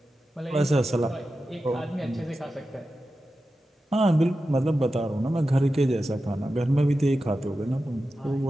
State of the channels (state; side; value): normal; both; correlation 0.92